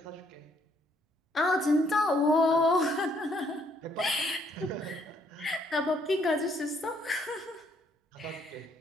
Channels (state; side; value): normal; both; correlation 0.69